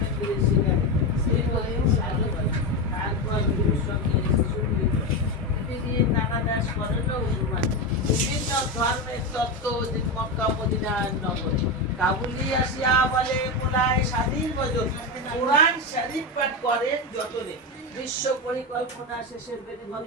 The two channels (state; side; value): normal; both; correlation 0.14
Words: বিভিন্ন ধর্মের তত্ত্ব মক্কা মদিনার নগরে কাবুলি আসিয়া বলে মোলায় স্বাধীন বজন কোরআন শরীফ পাঠ করেন যতনে বিশ্ব পরিকল্পনা শেষের